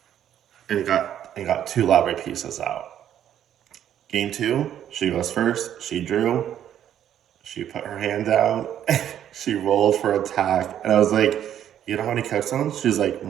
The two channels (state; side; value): quieter; left; 10.4 dB